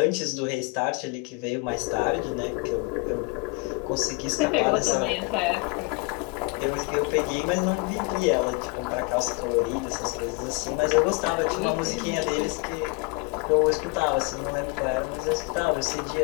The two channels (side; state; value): right; quieter; 29.0 dB